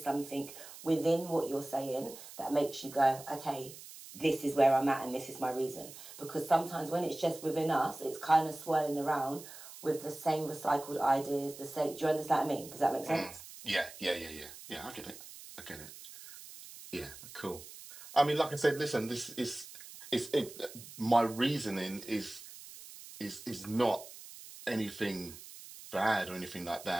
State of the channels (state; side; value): noise; right; hiss, 15 dB below the sound